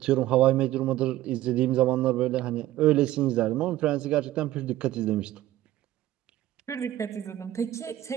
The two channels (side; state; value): left; quieter; 14.6 dB